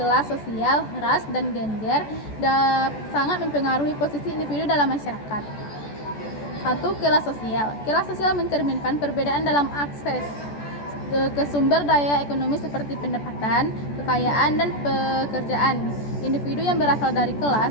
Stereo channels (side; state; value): right; late; 14 ms